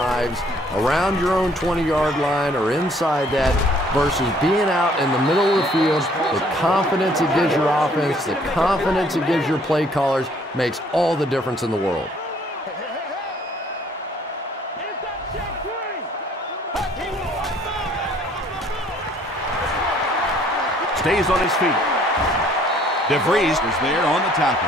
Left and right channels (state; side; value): normal; both; correlation 0.60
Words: around your own 20-yard line or inside that versus being out in the middle of the field. The confidence it gives your offense, the confidence it gives your play callers makes all the difference in the world. Stays on his feet. DeVries is there on the tackle.